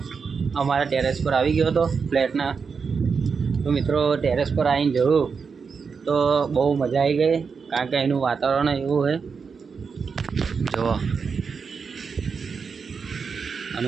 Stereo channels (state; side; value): quieter; left; 5.6 dB